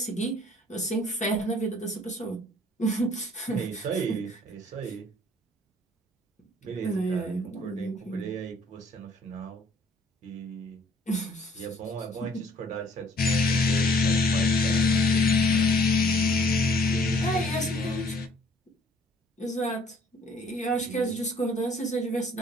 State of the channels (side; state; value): both; normal; correlation 0.59